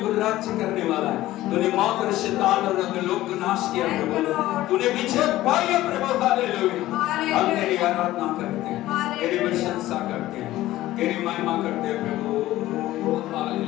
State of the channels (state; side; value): quieter; right; 15.7 dB